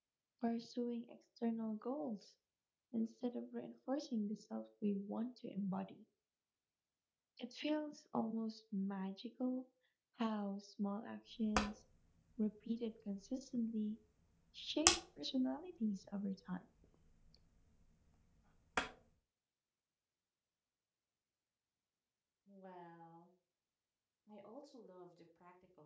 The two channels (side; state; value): both; identical; correlation 1.00